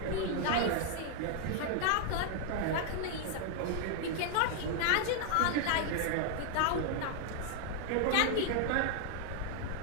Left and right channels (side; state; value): both; different; correlation 0.00